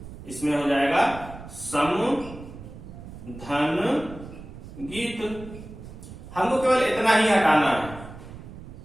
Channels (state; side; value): noise; right; rumble, 14 dB below the sound